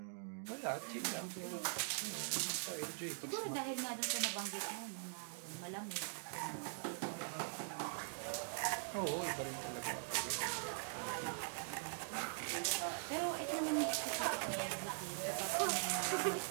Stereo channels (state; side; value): silent; left; digital silence